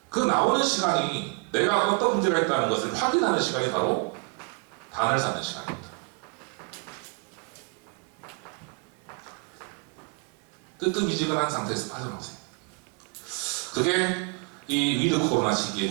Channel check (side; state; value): left; quieter; 32.1 dB